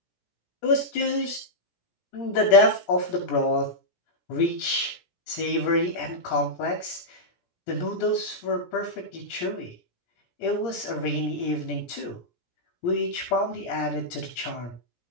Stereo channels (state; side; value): late; right; 17 ms